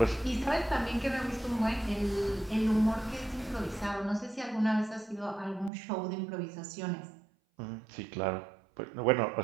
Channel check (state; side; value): drops out; left; at 5.7 s